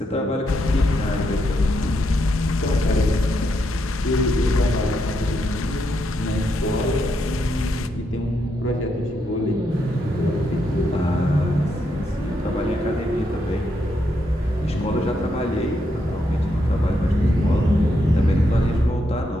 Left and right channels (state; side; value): normal; both; correlation 0.79